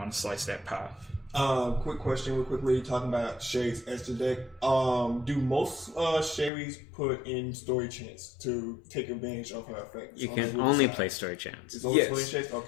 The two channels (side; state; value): right; drops out; at 6.5 s